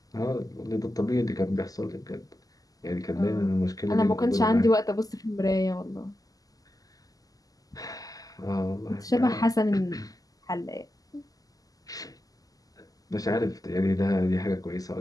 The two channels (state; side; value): late; right; 0.17 ms